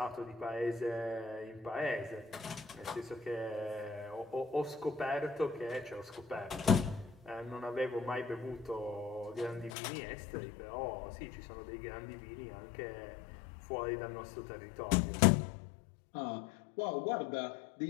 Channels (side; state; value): right; drops out; at 9.7 s